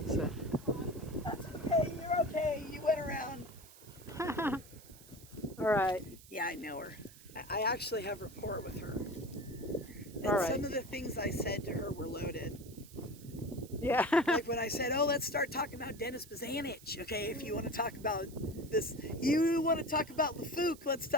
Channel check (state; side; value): noise; right; hiss, 20 dB below the sound